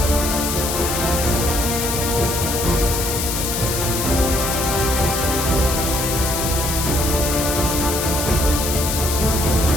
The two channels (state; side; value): noise; left; hiss, 2 dB below the sound